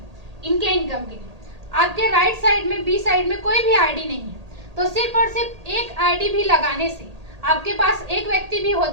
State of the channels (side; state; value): left; late; 1.8 ms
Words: इनके इनकम के लिए, आपके राइट साइड में बी साइड में कोई भी आईडी नहीं है, तो सिर्फ और सिर्फ एक आईडी भी लगाने से, आपके पास एक व्यक्ति भी